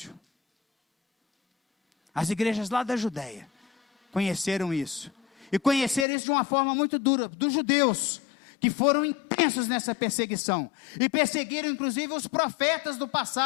as igrejas lá da Judéia, conheceram isso. E conheceram isso de uma forma muito dura, dos judeus, que foram intensos nessa perseguição, e perseguiram inclusive os profetas do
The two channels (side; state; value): right; drops out; at 6.1 s